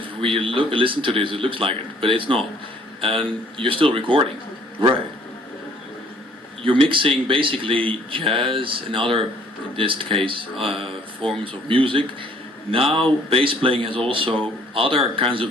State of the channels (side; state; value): both; normal; correlation 0.59